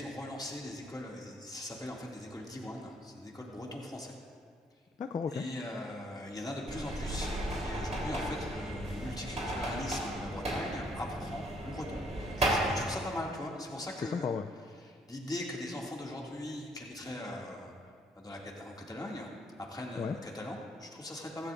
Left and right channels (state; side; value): normal; both; correlation 0.67